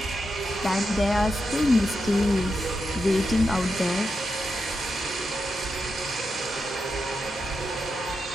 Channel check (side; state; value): both; normal; correlation 0.86